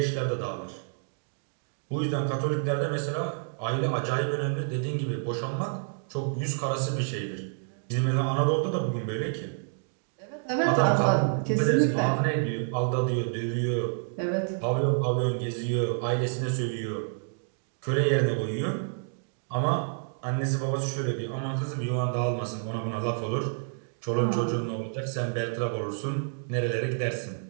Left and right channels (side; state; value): left; silent; 59 dB below the other